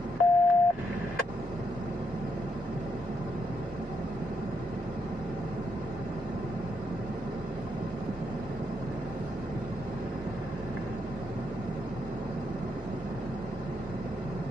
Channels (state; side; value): normal; both; correlation 0.79